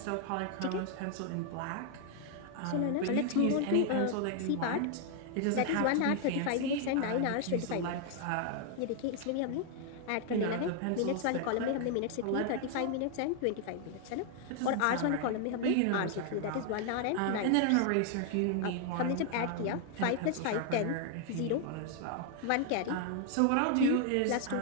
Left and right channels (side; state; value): both; different; correlation 0.00